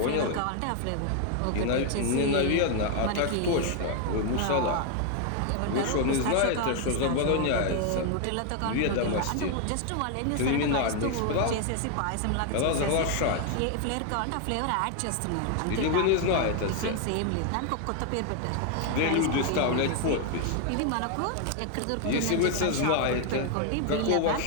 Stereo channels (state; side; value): different; both; correlation 0.00